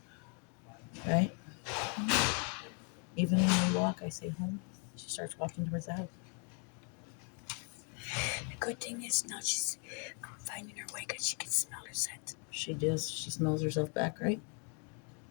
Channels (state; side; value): quieter; right; 38.3 dB